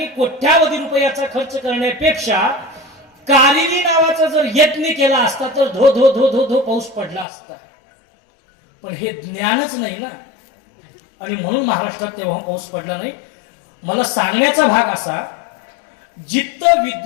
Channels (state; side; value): drops out; right; at 7.2 s